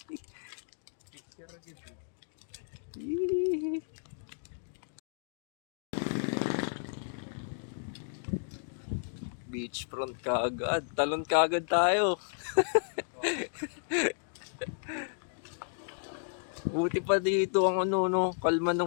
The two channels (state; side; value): silent; right; digital silence